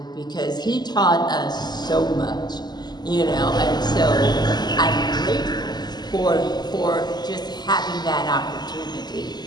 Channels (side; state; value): right; late; 0.20 ms